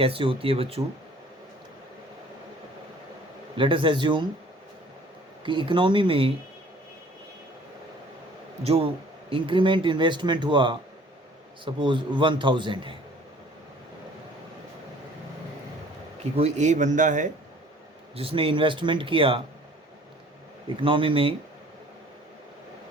होती है बच्चों। लेट अस एज्यूम कि इकोनॉमी में जो इंक्रीमेंट इन्वेस्टमेंट हुआ, सपोज 1000 है, कि कोई ए बंदा है जिसने इन्वेस्टमेंट किया इकोनॉमी में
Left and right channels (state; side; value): normal; both; correlation 0.53